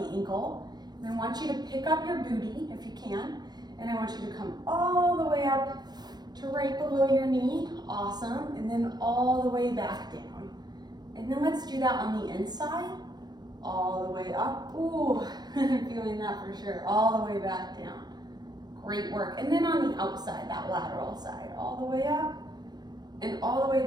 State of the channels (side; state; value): left; late; 0.20 ms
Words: ankle, and I want you to pick up your booty if you can, and I want you to come all the way up to right below your knee. Awesome. And then all the way back down. And then let's do that on the inside, all the way up. Ooh, I'm feeling that for sure. All the way back down. Great work. And then on the outside, that lateral side, all the way up and all the way